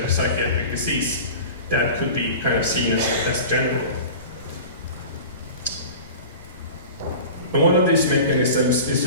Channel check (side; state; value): both; inverted; correlation -0.36